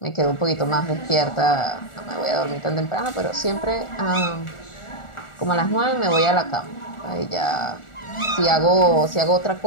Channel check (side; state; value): right; late; 1.4 ms